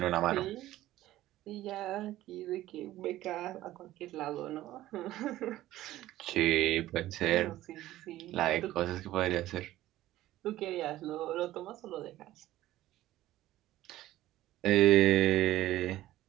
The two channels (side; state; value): left; quieter; 15.1 dB